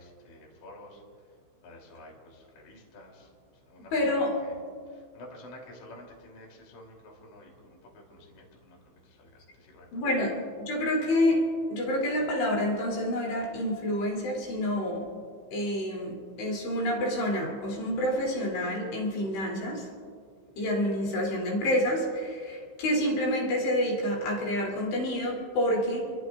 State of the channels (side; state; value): right; late; 15 ms